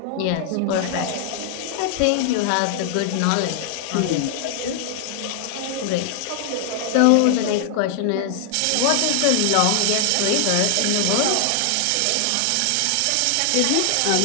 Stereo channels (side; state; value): both; different; correlation 0.00